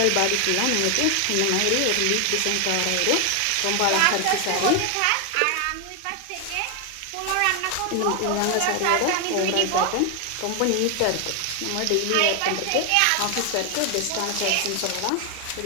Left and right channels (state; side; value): different; both; correlation 0.01